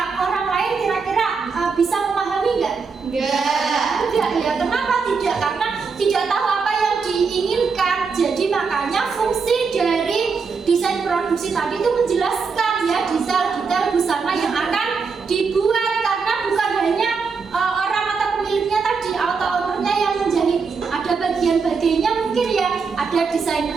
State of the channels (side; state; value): left; quieter; 5.2 dB